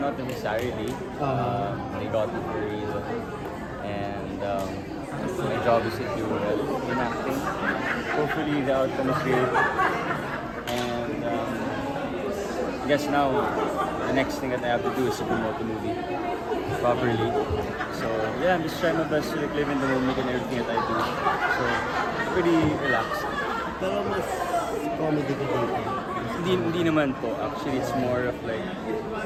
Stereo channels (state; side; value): identical; both; correlation 1.00